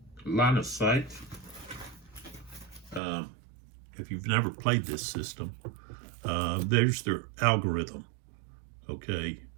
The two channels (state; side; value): drops out; left; at 3.0 s